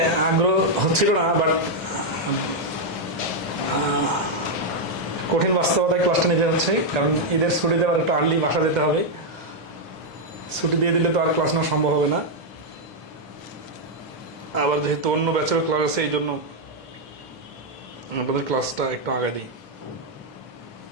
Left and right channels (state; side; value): normal; both; correlation -0.01